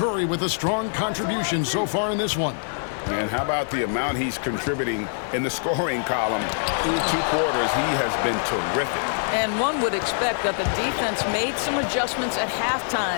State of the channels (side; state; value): right; silent; digital silence